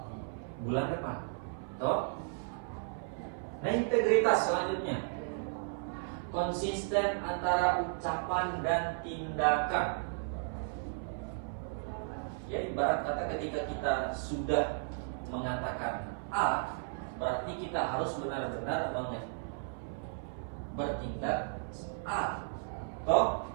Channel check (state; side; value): silent; left; 55 dB below the other